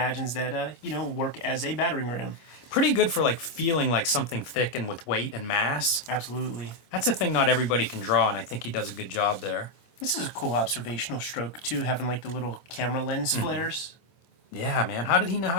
that work as a battering ram. Pretty good for like feeling like something thick and with weight and mass. Absolutely. That's a thing not everybody can draw, and I think he does a good job there. This is a cool observational stroke too, having like the little camera lens flares. Yeah, man. How did he know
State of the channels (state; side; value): late; right; 25 ms